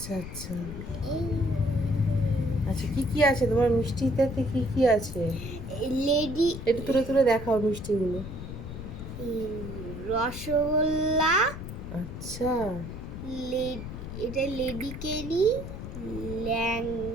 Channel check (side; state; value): left; noise; rumble, 9 dB below the sound